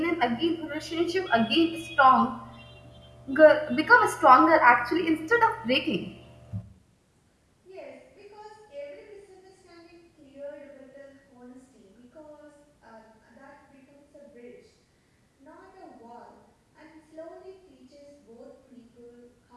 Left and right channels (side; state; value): both; identical; correlation 1.00